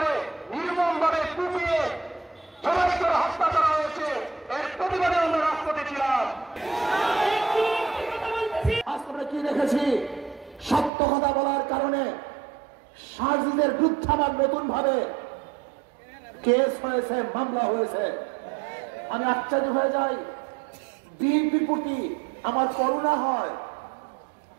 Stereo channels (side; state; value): left; drops out; at 10.9 s